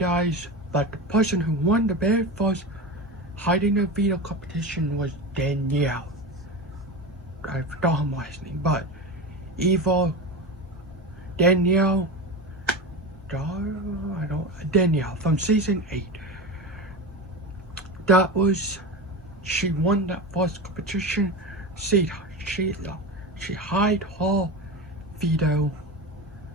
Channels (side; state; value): both; normal; correlation 0.24